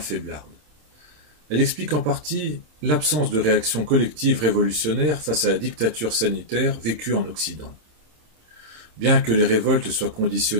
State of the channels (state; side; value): late; left; 27 ms